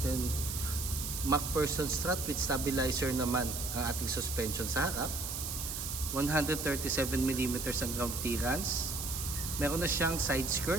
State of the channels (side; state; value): right; noise; hiss, 4 dB below the sound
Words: MacPherson strut with stabilizer naman ang ating suspension sa harap. 137mm ang ground clearance. Meron na siyang side